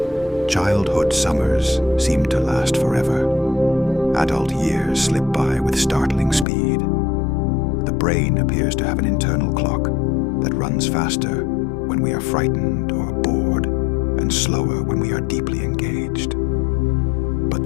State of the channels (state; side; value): drops out; right; at 6.5 s